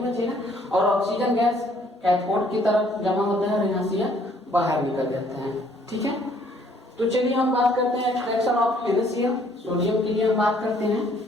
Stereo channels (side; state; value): both; normal; correlation 0.62